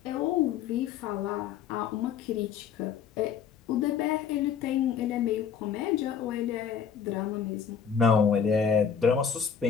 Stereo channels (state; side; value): quieter; right; 7.2 dB